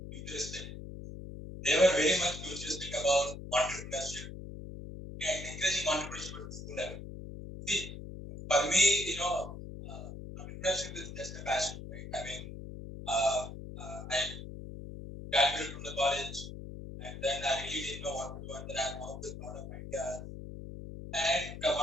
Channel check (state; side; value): noise; left; hum, 10 dB below the sound